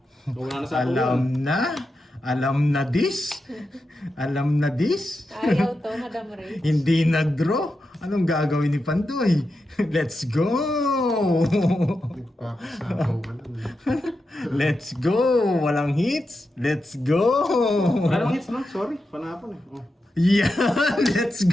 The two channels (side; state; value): both; normal; correlation 0.88